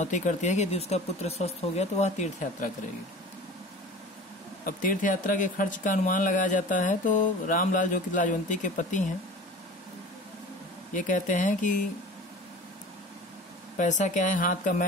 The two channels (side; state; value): both; normal; correlation 0.39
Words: करती है कि यदि उसका पुत्र स्वस्थ हो गया तो वह तीर्थ यात्रा करेगी। अब तीर्थ यात्रा के खर्च का अनुमान लगाया जाता है तो रामलाल, जो कि लाजवंती के पति हैं, ये कहते हैं कि पैसा क्या है, हाथ का